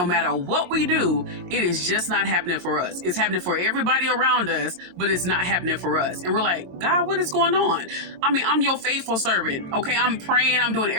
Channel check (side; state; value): left; late; 22 ms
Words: matter what we do, it is just not happening for us. It's happening for everybody around us, but it's not happening for us. And we're like, God, what is going on? I'm your faithful servant. Okay, I'm praying. I'm doing